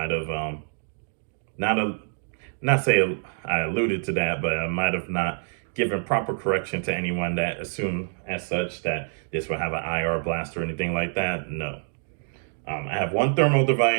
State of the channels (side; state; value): left; silent; 61 dB below the other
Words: have not say I alluded to that, but I might have not given proper correction to anyone that assumed as such that this would have an IR blast or anything like that. No. I have one thermal